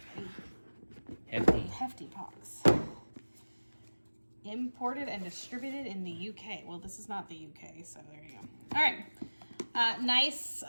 a hefty box. Imported and distributed in the UK. Well, this is not the UK, so there you go. All right. Nice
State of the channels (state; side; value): inverted; both; correlation -1.00